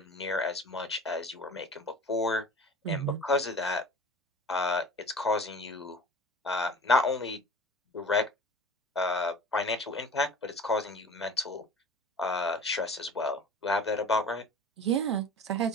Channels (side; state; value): both; normal; correlation 0.40